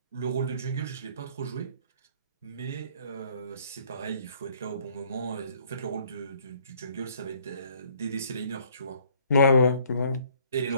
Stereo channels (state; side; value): inverted; both; correlation -0.60